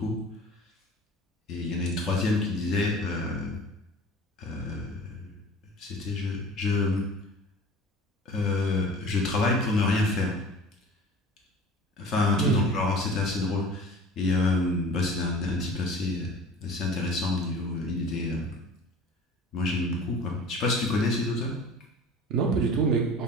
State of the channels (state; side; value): normal; both; correlation 0.41